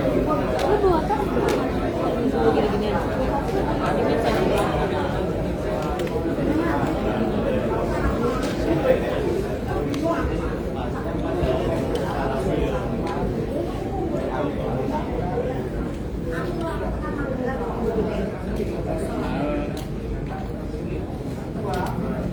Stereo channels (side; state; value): both; identical; correlation 1.00